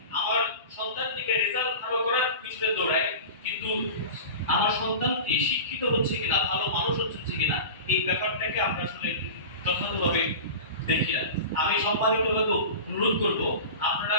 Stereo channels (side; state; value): both; inverted; correlation -0.32